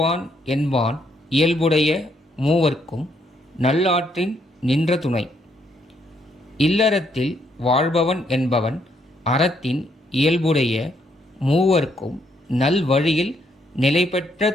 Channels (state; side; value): normal; both; correlation 0.73